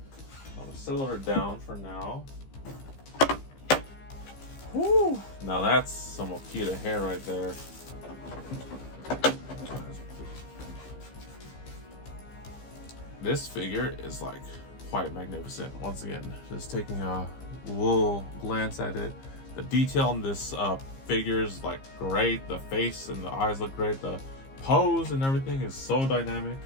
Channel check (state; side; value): late; right; 15 ms